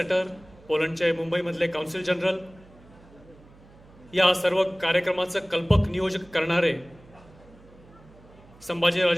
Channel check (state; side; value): noise; right; hum, 24 dB below the sound